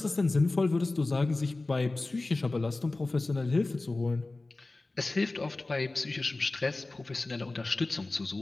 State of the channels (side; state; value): right; quieter; 3.1 dB